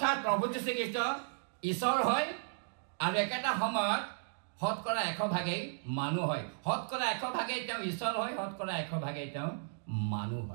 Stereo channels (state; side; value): silent; left; digital silence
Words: প্ৰভু যীশুখ্ৰীষ্ট ঈশ্বৰ হয় আৰু একেটা সময়ত শতকৰা 100% মানুহ হয় শতকৰা 100% তেওঁ ঈশ্বৰ হয় শতকৰা 100% তেওঁ মানুহ